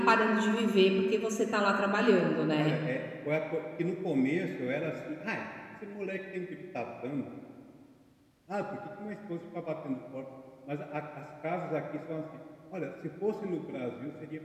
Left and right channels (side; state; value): both; identical; correlation 1.00